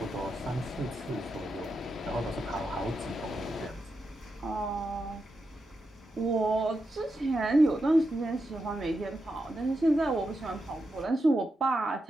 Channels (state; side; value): normal; both; correlation 0.87